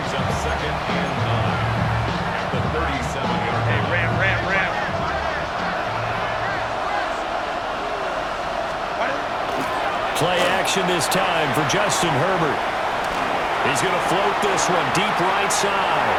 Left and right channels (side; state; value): both; identical; correlation 1.00